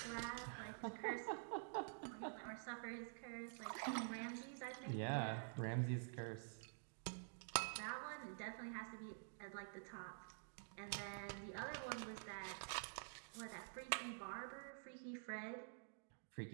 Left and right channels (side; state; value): left; silent; digital silence